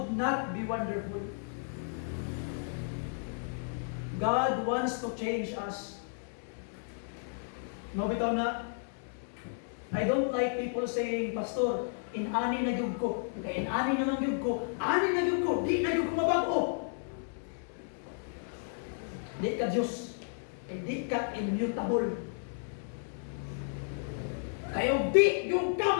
not be wonderful. God wants to change us. No, bitaw na. I don't like people saying, Pastor, in-ani na gyud ko. Kaya in-ani naman gyud ko. Ani na gyud ko. Di na gyud ko mabago. Di ka Diyos. Di ka immutable. Kaya di yung ka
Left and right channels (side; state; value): right; silent; digital silence